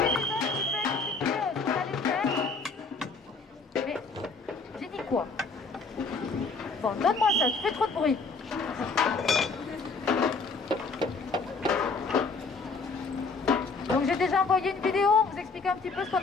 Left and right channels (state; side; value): quieter; right; 4.3 dB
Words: quoi? Bon, donne-moi ça, tu fais trop de bruit. Donc j'ai déjà envoyé une vidéo, vous expliquer un petit peu ce qu'on